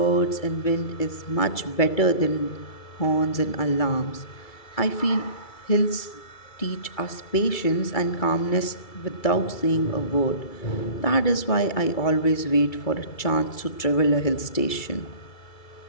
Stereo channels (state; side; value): late; right; 2.3 ms